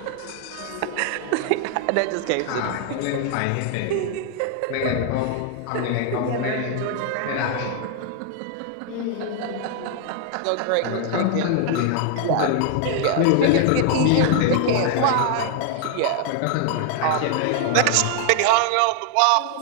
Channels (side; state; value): both; different; correlation 0.00